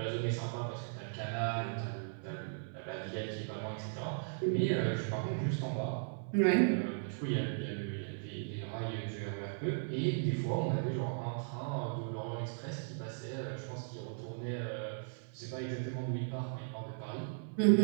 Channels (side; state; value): left; silent; 53 dB below the other